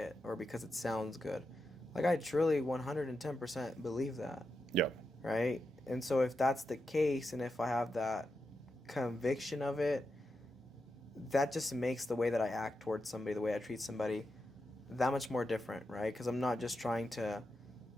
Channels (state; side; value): normal; both; correlation 0.88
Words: or because it sounds good. Like, I truly 110% believe that, Yeah. right? And so if that's the case, and if I have that conviction of it, that just makes the way that I act towards somebody, the way I treat somebody, that much more different, right? Because I'm not just trying to,